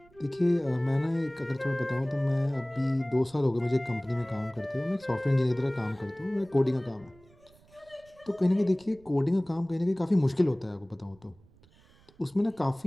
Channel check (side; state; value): right; noise; rumble, 28 dB below the sound